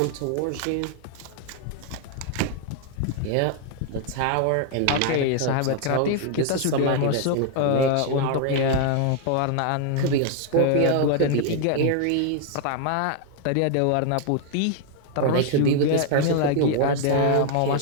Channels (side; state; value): both; different; correlation 0.00